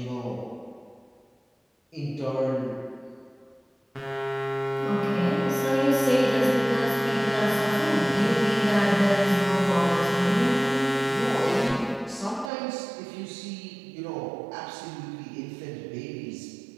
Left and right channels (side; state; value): left; drops out; at 12.5 s